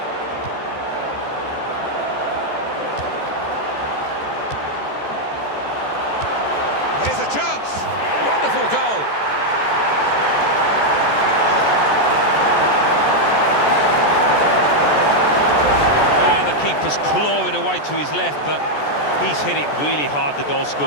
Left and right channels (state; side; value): late; right; 14 ms